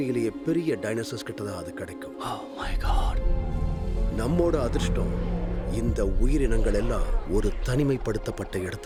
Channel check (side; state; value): both; identical; correlation 1.00